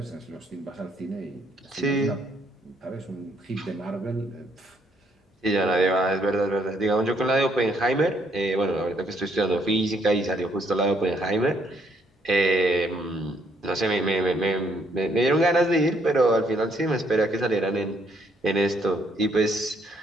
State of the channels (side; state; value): both; normal; correlation 0.70